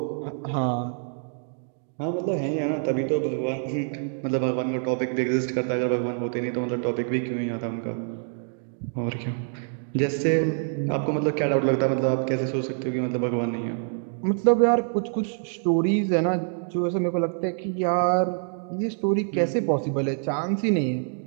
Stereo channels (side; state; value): left; silent; 58 dB below the other